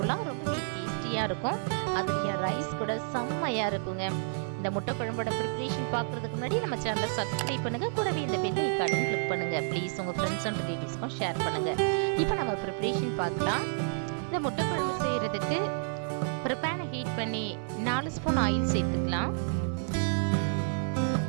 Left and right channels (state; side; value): silent; left; digital silence